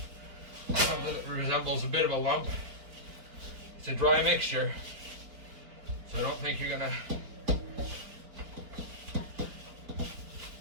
something that resembles a bit of a lump. It's a dry mixture, so I don't think you're going to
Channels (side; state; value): left; late; 4.5 ms